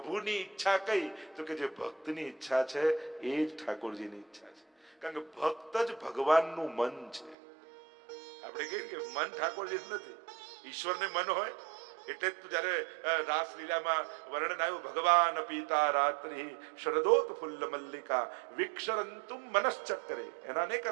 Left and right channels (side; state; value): left; drops out; at 7.4 s